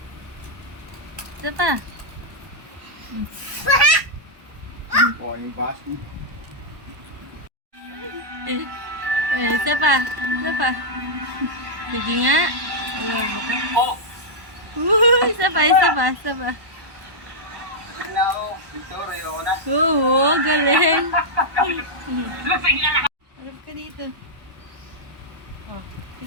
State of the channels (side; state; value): left; late; 1.2 ms